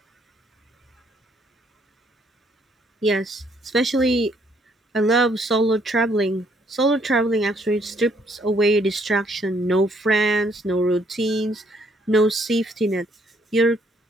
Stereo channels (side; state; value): both; normal; correlation 0.68